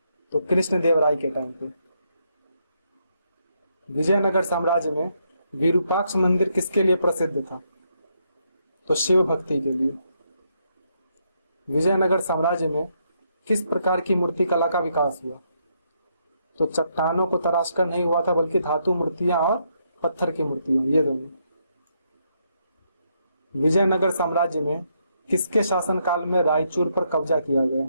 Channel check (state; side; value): inverted; both; correlation -0.76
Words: तो कृष्णदेवराय के टाइम पे। विजयनगर साम्राज्य में विरूपाक्ष मंदिर किसके लिए प्रसिद्ध था? तो शिव भक्ति के लिए। विजयनगर साम्राज्य में किस प्रकार की मूर्ति कला का विकास हुआ? तो चट्टानों को तराशकर नहीं हुआ था, बल्कि धातु मूर्तियां और पत्थर की मूर्तियां, ये दोनों। विजयनगर साम्राज्य में किसके शासनकाल में रायचूर पर कब्जा किया गया?